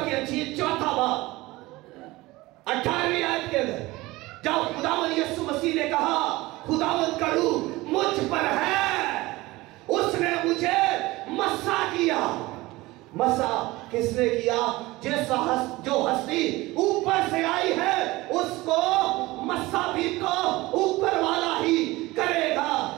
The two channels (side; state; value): left; quieter; 20.1 dB